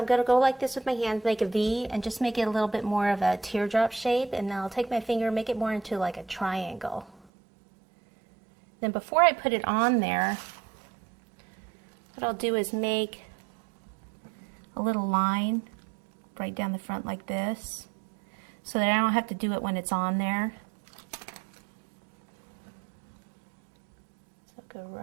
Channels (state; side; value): drops out; left; at 7.2 s